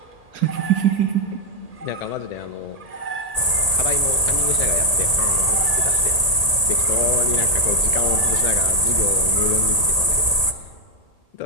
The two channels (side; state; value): right; late; 1.8 ms